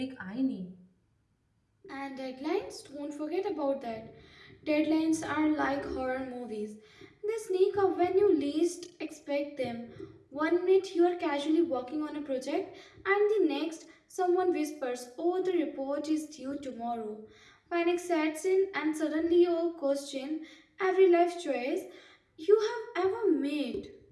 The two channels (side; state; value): both; identical; correlation 1.00